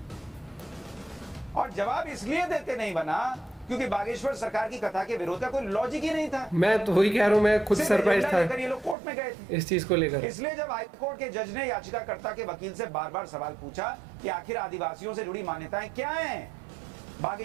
और जवाब इसलिए देते नहीं बना क्योंकि बागेश्वर सरकार की कथा के विरोध का कोई लॉजिक ही नहीं था। मैं तो वही कह रहा हूँ, मैं खुद सरप्राइज था ये लोग कोर्ट में गए थे इस चीज को लेकर। इसलिए जब हाईकोर्ट के जज ने याचिकाकर्ता के वकील से बार बार सवाल पूछा कि आखिर आदिवासियों से जुड़ी मान्यताएं क्या हैं,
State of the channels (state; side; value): drops out; left; at 9.0 s